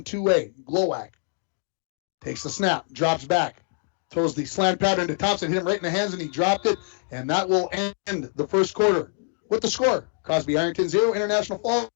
Glowacke takes the snap, drops back, throws the slant pattern to Thompson, hit him right in the hands, and he dropped it. And that will end the first quarter with the score. Crosby Ironton 0, International Falls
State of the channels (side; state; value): right; silent; digital silence